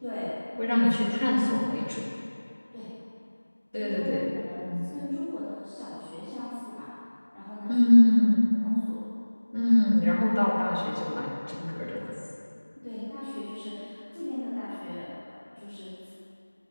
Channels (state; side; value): inverted; both; correlation -1.00